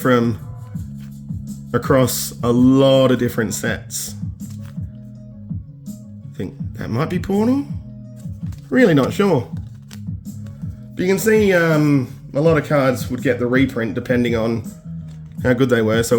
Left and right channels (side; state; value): both; identical; correlation 1.00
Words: across a lot of different sets. I think that might be Portal. Really not sure. But you can see a lot of cards would get the reprint depending on how good they were.